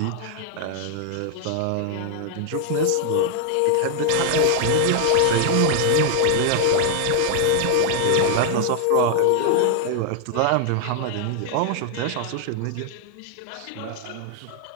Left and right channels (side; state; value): both; different; correlation 0.00